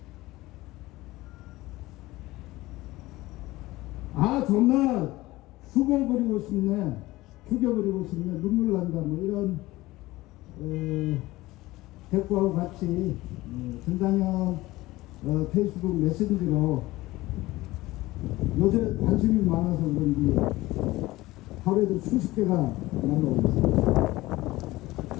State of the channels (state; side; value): quieter; right; 18.7 dB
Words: 정말 죽어버리고 싶네, 죽여버리고 싶네, 눈물 난다, 뭐 이런 댓글하고 같이 전당현 페이스북 메신저로 요새 관심이 많아서 그런지 하루에도 수십 개가 날라오고 있습니다.